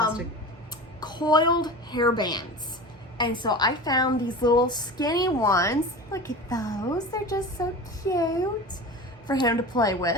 Coiled hair bands. And so I found these little skinny ones. Look at those. They're just so cute for him to play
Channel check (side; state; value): both; normal; correlation 0.32